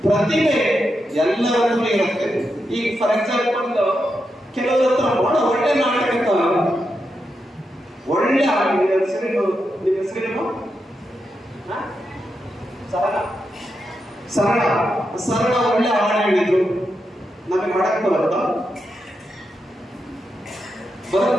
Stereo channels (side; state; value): both; normal; correlation 0.86